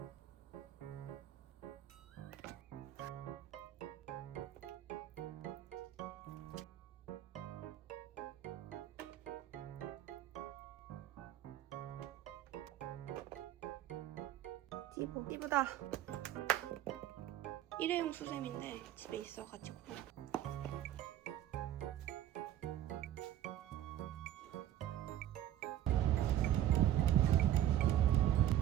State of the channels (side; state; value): left; quieter; 12.1 dB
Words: 띠부다. 일회용 수세미인데 집에 있어가지고.